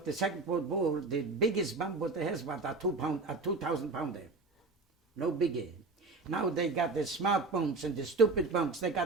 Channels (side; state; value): left; quieter; 3.6 dB